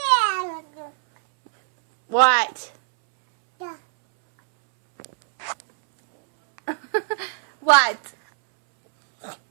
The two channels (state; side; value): silent; left; 65 dB below the other